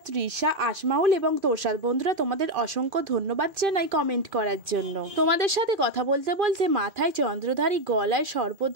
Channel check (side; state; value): left; late; 2.5 ms